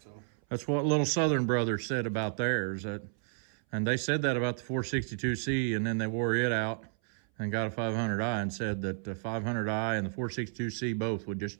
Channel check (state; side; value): silent; left; 57 dB below the other